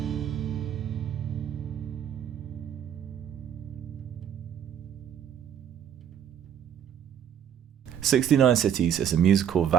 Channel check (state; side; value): quieter; left; 9.3 dB